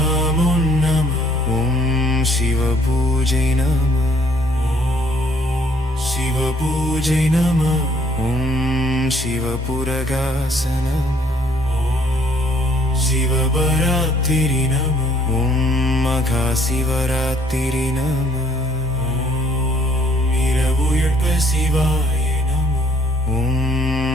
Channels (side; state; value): both; normal; correlation 0.62